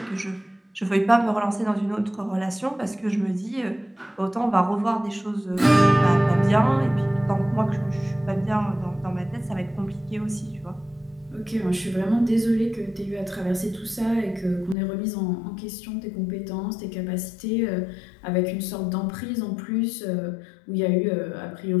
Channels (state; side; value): drops out; right; at 14.8 s